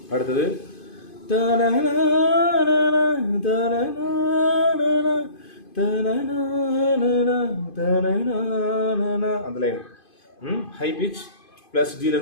அடுத்தது அந்த லைன் ஹை பிச். பிளஸ்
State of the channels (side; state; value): right; late; 2.5 ms